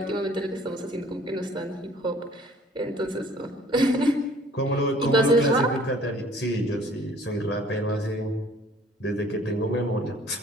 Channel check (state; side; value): normal; both; correlation 0.55